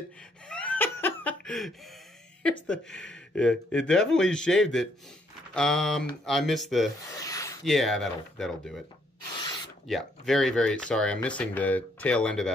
Here's the, yeah, it definitely shaved it. I missed the, yeah, that'll do it. Yeah, very, very sorry. I'm missing the tail end of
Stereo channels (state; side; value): normal; both; correlation 0.70